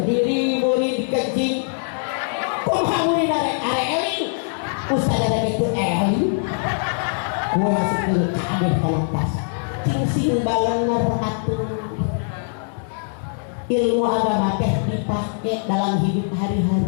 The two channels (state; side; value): silent; right; digital silence